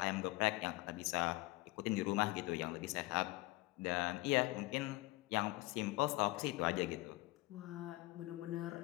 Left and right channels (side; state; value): right; quieter; 20.9 dB